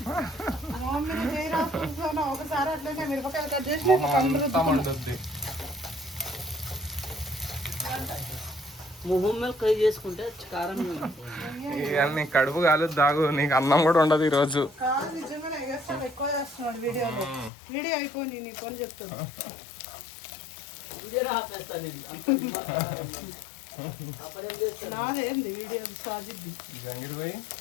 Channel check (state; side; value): drops out; right; at 17.5 s